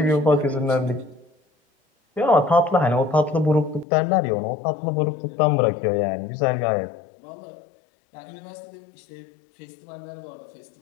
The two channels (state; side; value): drops out; right; at 3.9 s